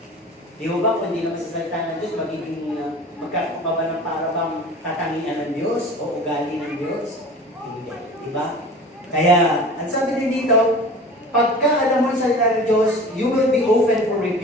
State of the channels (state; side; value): normal; both; correlation 0.40